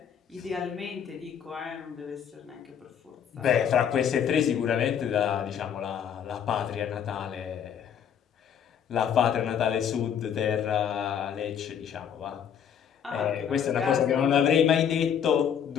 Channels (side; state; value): right; quieter; 8.4 dB